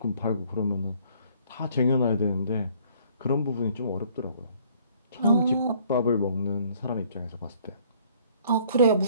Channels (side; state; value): both; inverted; correlation -0.60